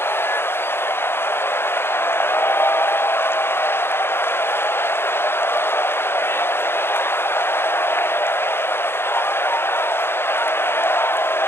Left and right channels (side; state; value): right; late; 0.11 ms